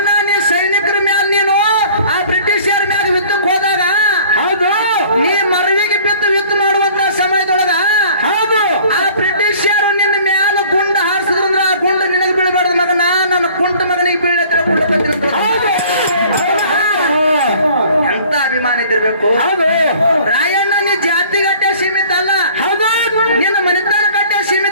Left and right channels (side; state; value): both; inverted; correlation -0.50